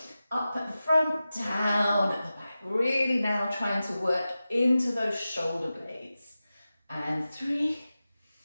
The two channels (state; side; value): inverted; both; correlation -0.94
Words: Up at the front, down at the back. Really now trying to work into those shoulder blades. And 3